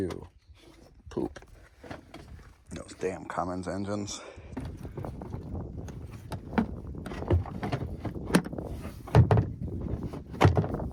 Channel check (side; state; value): both; identical; correlation 1.00